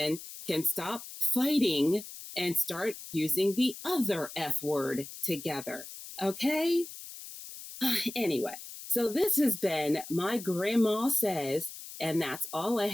can stop fighting and start using the other F word together. Okay? Anyway, so this has been My Grandma Says, and that's all I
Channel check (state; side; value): noise; left; hiss, 13 dB below the sound